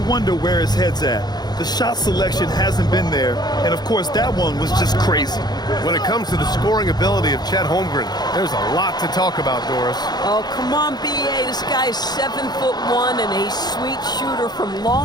wonder where his head's at. The shot selection hasn't been there, and of course that one was just crazy. When it comes to the scoring ability of Chet Holmgren, there's a lot to talk about, Doris. Oh, come on, B.A. This guy's 7'1" and a sweet shooter from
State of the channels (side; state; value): right; late; 0.20 ms